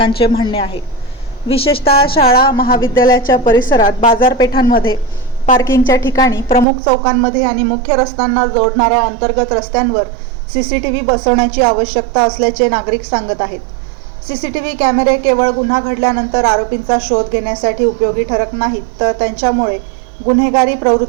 म्हणणे आहे. विशेषतः शाळा, महाविद्यालयाच्या परिसरात, बाजारपेठांमध्ये, पार्किंगच्या ठिकाणी, प्रमुख चौकांमध्ये आणि मुख्य रस्त्यांना जोडणाऱ्या अंतर्गत रस्त्यांवर सीसीटीव्ही बसवण्याची आवश्यकता असल्याचे नागरिक सांगत आहेत. सीसीटीव्ही कॅमेरे केवळ गुन्हा घडल्यानंतर आरोपींचा शोध घेण्यासाठी उपयोगी ठरत नाहीत, तर त्यांच्यामुळे गुन्हेगारी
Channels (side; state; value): left; drops out; at 6.7 s